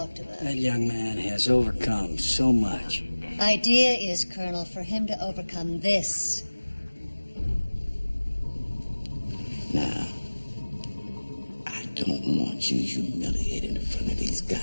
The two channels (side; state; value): both; inverted; correlation -1.00